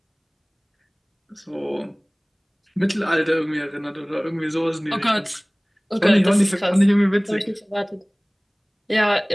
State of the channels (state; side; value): identical; both; correlation 1.00